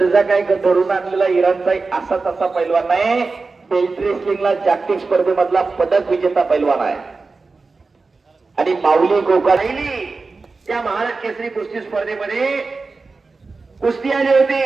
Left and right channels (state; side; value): quieter; left; 4.0 dB